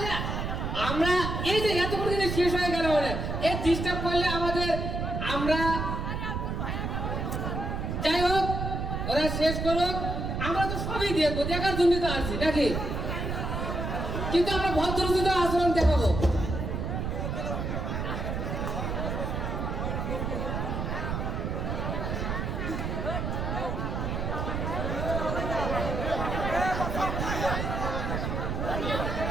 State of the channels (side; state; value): right; noise; rumble, 2 dB below the sound